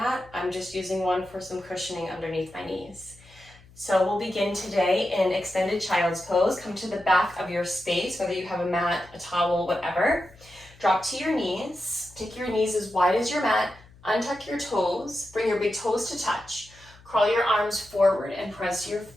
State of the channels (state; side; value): noise; left; hum, 25 dB below the sound